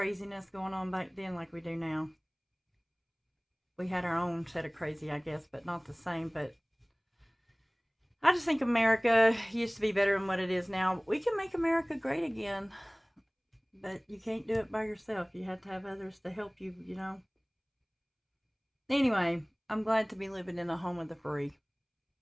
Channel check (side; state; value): both; identical; correlation 1.00